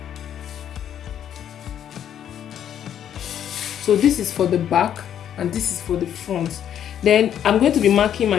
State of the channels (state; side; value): quieter; right; 9.8 dB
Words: So this is for the back and this is for the front. Then I'm going to be marking my